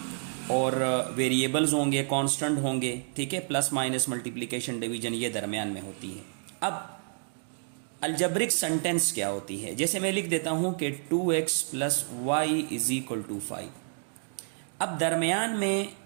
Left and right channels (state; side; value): silent; left; digital silence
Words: और वेरिएबल्स होंगे, कांस्टेंट होंगे, ठीक है। प्लस माइनस मल्टीप्लिकेशन डिवीजन ये दरमियान में होती है। अब अलजब्रिक सेंटेंस क्या होती है, जैसे मैं लिख देता हूं कि 2x + y = 5। अब दरमियान में